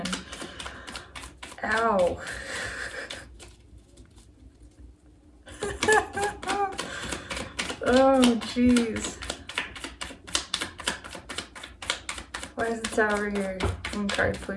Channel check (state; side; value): identical; both; correlation 1.00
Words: Oh, jeez. Why is the Tower here? One card,